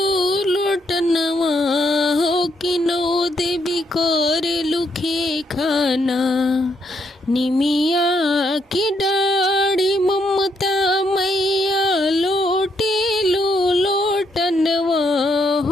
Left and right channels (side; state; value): both; normal; correlation 0.75